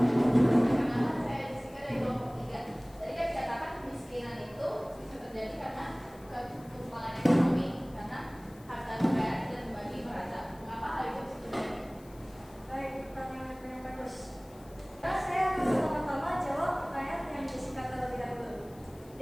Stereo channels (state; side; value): noise; left; hiss, 25 dB below the sound